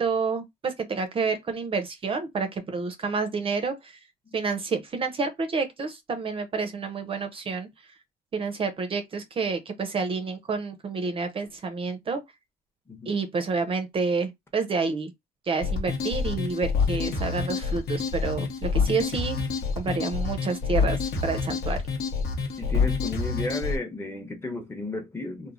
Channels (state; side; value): normal; both; correlation 0.49